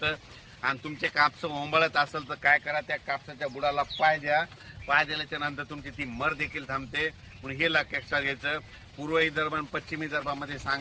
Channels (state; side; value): identical; both; correlation 1.00